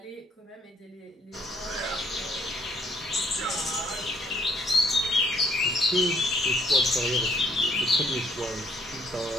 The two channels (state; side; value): normal; both; correlation 0.66